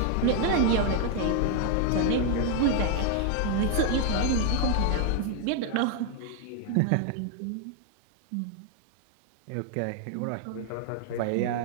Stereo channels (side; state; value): both; different; correlation 0.00